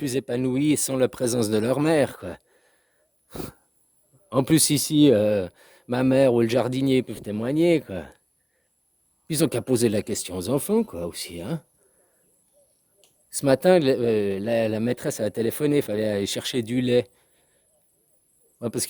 épanouis sans la présence de leur mère, quoi. En plus, ici, ma mère ou le jardinier peuvent témoigner, quoi. Ils ont qu'à poser la question aux enfants, quoi, aussi, hein. Ce matin, la maîtresse a téléphoné, il fallait aller chercher du lait. Ouais, parce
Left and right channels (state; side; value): identical; both; correlation 1.00